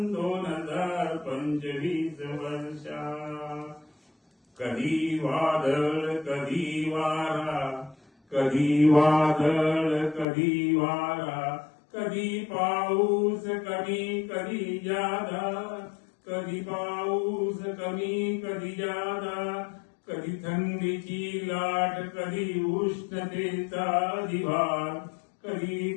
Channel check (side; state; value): right; drops out; at 10.2 s